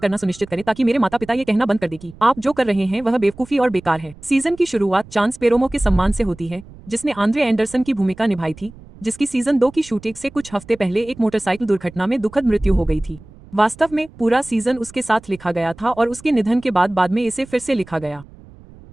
सुनिश्चित करें ताकि मेरे माता पिता ये कहना बंद कर दें कि आप जो कर रहे हैं वह बेवकूफी और बेकार है। सीजन की शुरुआत चांस पेरोमो के सम्मान से होती है, जिसने आंद्रे एंडरसन की भूमिका निभाई थी, जिसकी सीजन 2 की शूटिंग से कुछ हफ्ते पहले एक मोटरसाइकिल दुर्घटना में दुखद मृत्यु हो गई थी। वास्तव में पूरा सीजन उसके साथ लिखा गया था और उसके निधन के बाद में इसे फिर से लिखा गया।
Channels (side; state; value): right; noise; rumble, 21 dB below the sound